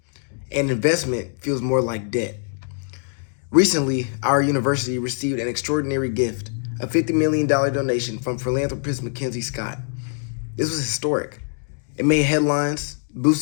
and investment feels more like debt. Recently, our university received an extraordinary gift, a $50 million donation from philanthropist Mackenzie Scott. This was historic. It made headlines,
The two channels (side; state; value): right; silent; 55 dB below the other